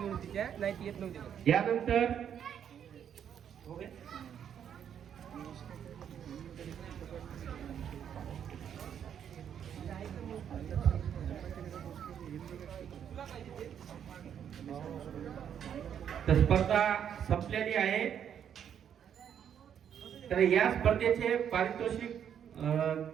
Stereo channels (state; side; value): quieter; left; 8.8 dB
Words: तिच्या नाही ती येत नव्हती. यानंतर स्पर्धा संपलेली आहे. तर या स्पर्धेचे पारितोषिक